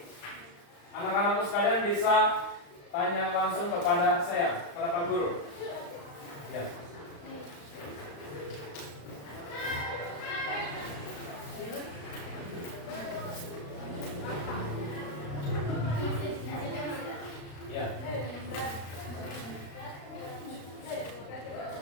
anak-anakku sekalian bisa tanya langsung kepada saya, kepada Pak Guru. Ya. Ya.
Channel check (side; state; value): right; late; 35 ms